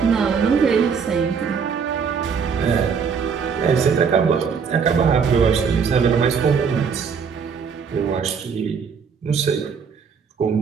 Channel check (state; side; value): quieter; left; 6.2 dB